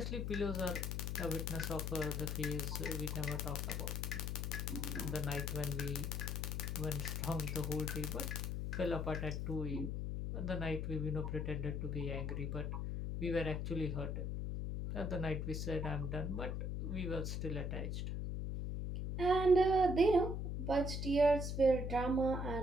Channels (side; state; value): left; noise; hum, 2 dB below the sound